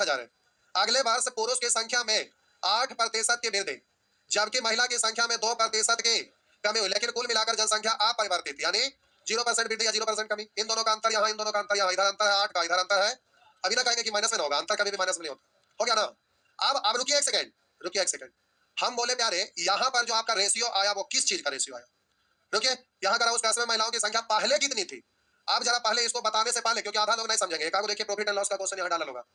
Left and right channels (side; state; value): both; identical; correlation 1.00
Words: है, अगले वर्ष पुरुष की संख्या में 8% की वृद्धि, जबकि महिला की संख्या में 2% की कमी हुई, लेकिन कुल मिलाकर जनसंख्या अपरिवर्तित, यानी 0% वृद्धि या 0% कमी। इन दोनों का अंतर यहाँ, इन दोनों का अंतर यहाँ, इधर अंतर है 8 का, इधर अंतर है, अभी ना कहेंगे कि माइनस में होगा, अंतर कभी भी माइनस में नहीं होता, हो गया ना। अब रुकिए एक सेकंड, रुकिए एक सेकंड, हम बोले प्यारे यहाँ पर जो आपका रेशियो आया वो किस चीज का रेशियो आया, रुकिए, यहाँ करा उस कस्बे में महिलाओं की संख्या पहले कितनी थी, आप जरा पहले इसको बताने से पहले, क्योंकि आधा लोग नहीं समझेंगे, एक आगे देखिए प्रॉफिट एंड लॉस का क्वेश्चन यहाँ डाला होगा,